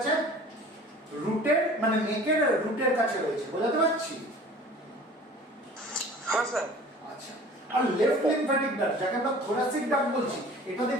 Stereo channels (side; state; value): both; normal; correlation 0.45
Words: রুটের মানে নেকের রুটের কাছে রয়েছে। বোঝাতে পারছি? হ্যাঁ স্যার। আচ্ছা, আর লেফট লিম্ফ্যাটিক ডাক্ট যাকে আমরা থোরাসিক ডাক্ট বলছি, এটা